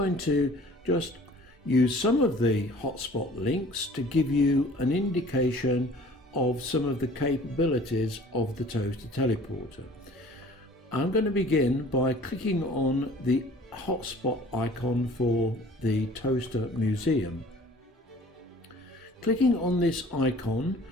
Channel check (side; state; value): both; normal; correlation 0.49